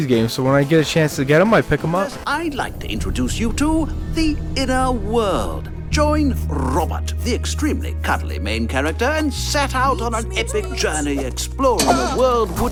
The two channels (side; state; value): both; identical; correlation 1.00